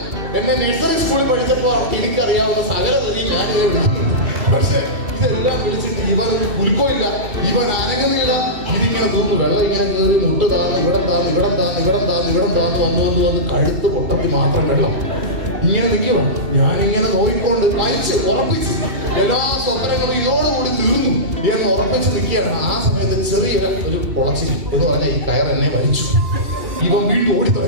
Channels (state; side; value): late; left; 2.3 ms